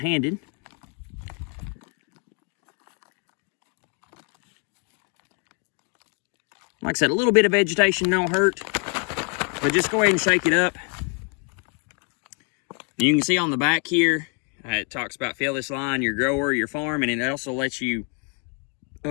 Like I said, a little bit of vegetation don't hurt, but just go ahead and shake it up. You can see on the back here, it talks about fill this line, your grower, your farm, and it also lets you,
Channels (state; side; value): quieter; right; 38.9 dB